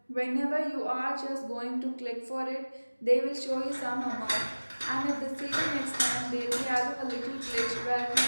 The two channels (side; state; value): both; inverted; correlation -1.00